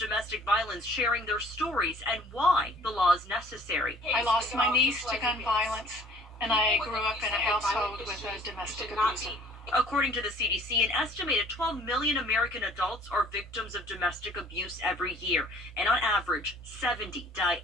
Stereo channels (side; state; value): both; normal; correlation 0.54